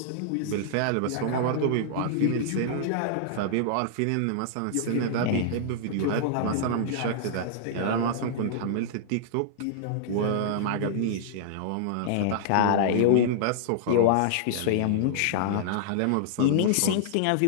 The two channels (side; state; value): both; different; correlation -0.01